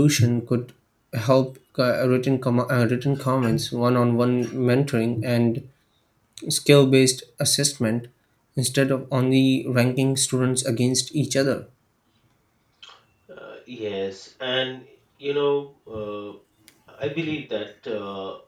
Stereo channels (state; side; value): identical; both; correlation 1.00